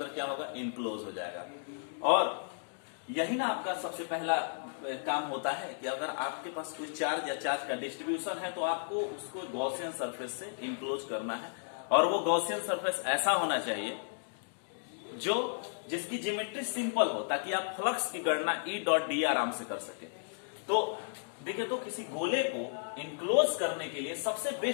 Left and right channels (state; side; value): silent; right; digital silence